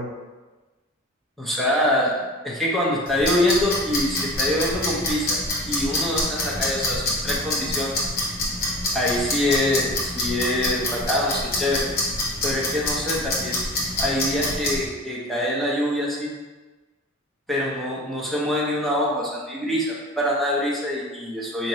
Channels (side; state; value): both; normal; correlation 0.36